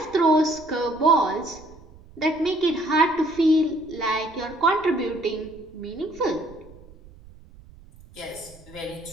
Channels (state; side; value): noise; right; rumble, 22 dB below the sound